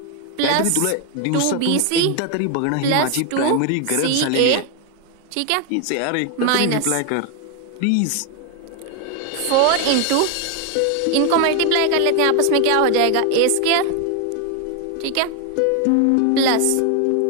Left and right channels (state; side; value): different; both; correlation 0.01